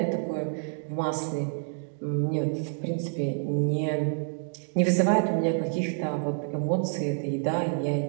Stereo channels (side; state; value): left; silent; digital silence